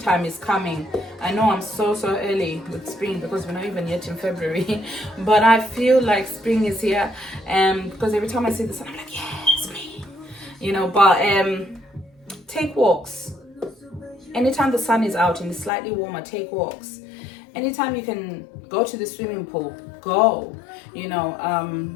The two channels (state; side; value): drops out; right; at 15.7 s